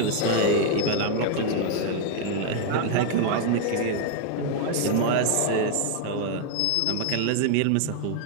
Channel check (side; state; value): both; different; correlation 0.00